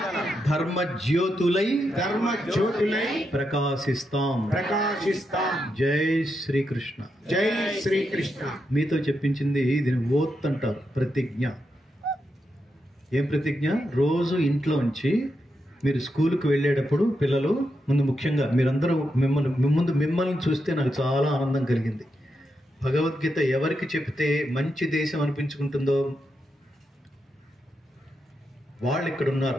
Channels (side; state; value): both; normal; correlation 0.84